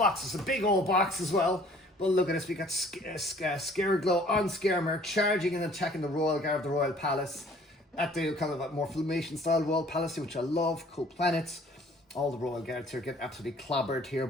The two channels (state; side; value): normal; both; correlation 0.55